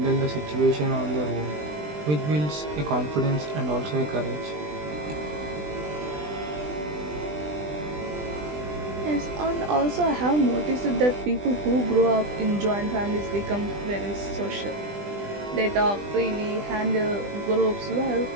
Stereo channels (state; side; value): late; left; 20 ms